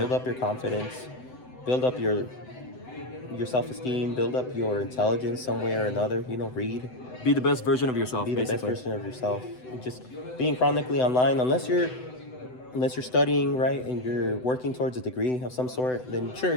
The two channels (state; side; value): late; right; 7.9 ms